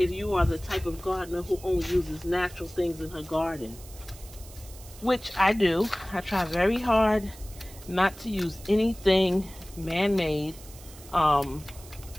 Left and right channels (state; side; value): noise; right; hiss, 19 dB below the sound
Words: you are the type of gardener who only uses natural things in her garden. Which I do. I try very hard not to use anything man-made.